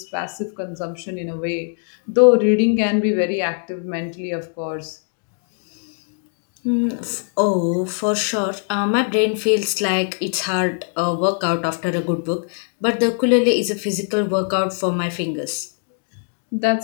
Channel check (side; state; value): right; silent; 56 dB below the other